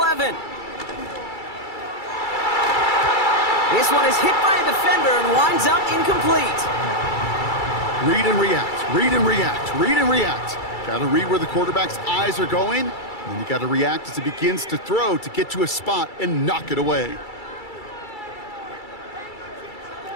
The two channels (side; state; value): right; late; 2.3 ms